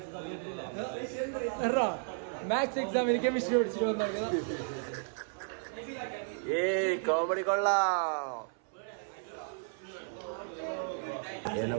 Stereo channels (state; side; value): silent; left; 55 dB below the other